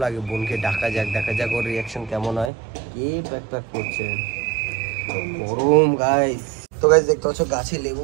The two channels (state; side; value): drops out; left; at 2.5 s